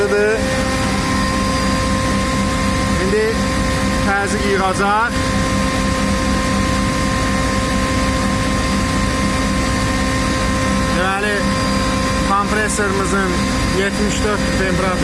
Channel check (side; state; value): both; identical; correlation 1.00